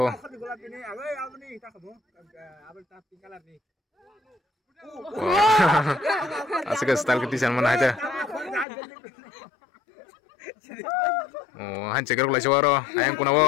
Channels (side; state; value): right; drops out; at 8.7 s